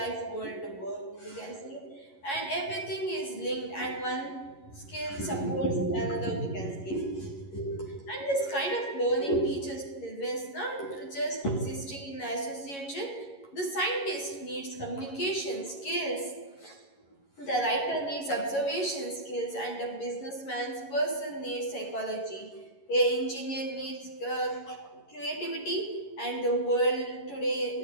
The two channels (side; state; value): right; late; 11 ms